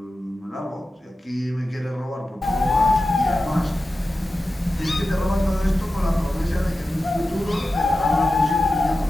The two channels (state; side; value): normal; both; correlation 0.93